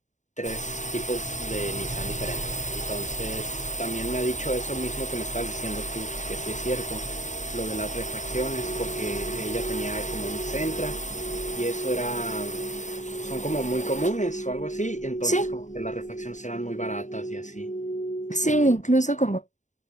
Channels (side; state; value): right; late; 0.35 ms